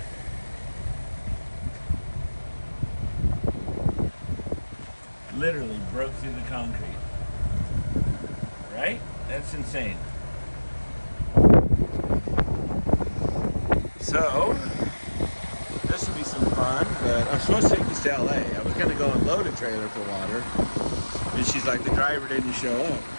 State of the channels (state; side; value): inverted; both; correlation -1.00